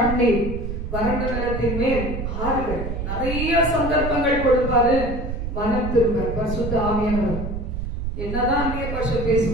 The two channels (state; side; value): noise; right; rumble, 4 dB below the sound